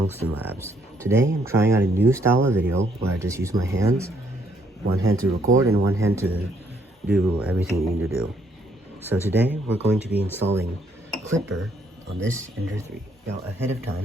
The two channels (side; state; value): both; normal; correlation 0.69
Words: Labs. Today I'm trying out a new style of video where I just use my hands, one hand to record and one hand to do everything you need to do. So today we're going to be installing Klipper on this Ender 3. Now ahead of